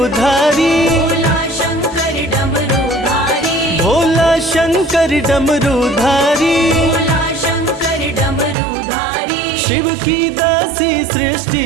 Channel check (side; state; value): left; drops out; at 8.6 s